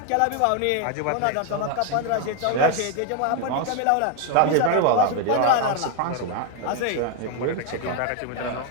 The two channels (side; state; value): both; different; correlation 0.01